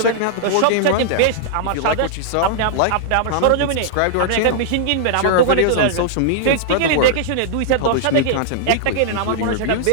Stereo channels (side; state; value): both; different; correlation -0.01